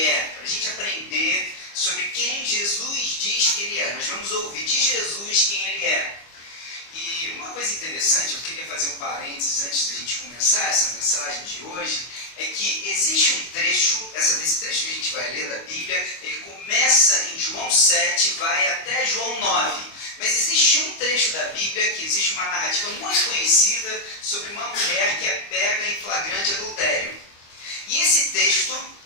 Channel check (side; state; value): right; late; 25 ms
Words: para a gente aprender sobre quem Jesus diz que Ele é. Nós vamos ouvir de Jesus quem Ele é. E uma coisa interessante, eu queria fazer um parênteses antes da gente começar essa mensagem de hoje, é que existe um trecho, esse trecho que a gente vai ler da Bíblia, ele começa em João 7 e vai até João 9. Mas existe um trecho da Bíblia que existe uma narrativa muito conhecida sobre uma mulher que é pega em flagrante adultério. E esse texto